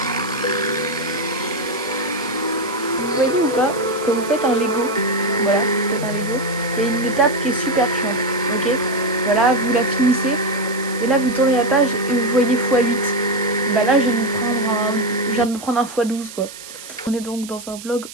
vous voyez ou pas, quand vous faites un Lego, voilà, vous faites un Lego, il y a une étape qui est super chiante, ok? Voilà, vous la finissez, et là vous tournez la page et vous voyez x8. Bah là, je viens de me prendre un x12, quoi. On est donc dans un vlog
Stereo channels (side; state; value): right; noise; hiss, 15 dB below the sound